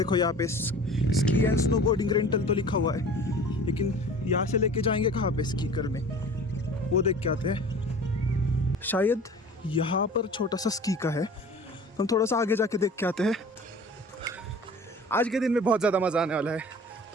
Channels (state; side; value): normal; both; correlation 0.42